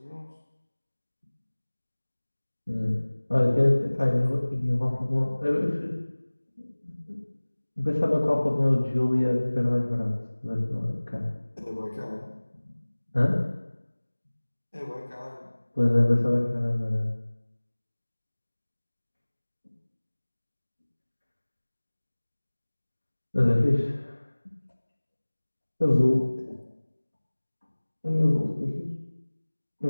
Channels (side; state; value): both; inverted; correlation -1.00